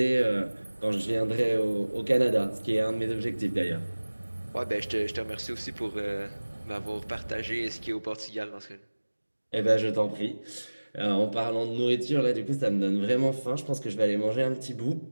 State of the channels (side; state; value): both; inverted; correlation -1.00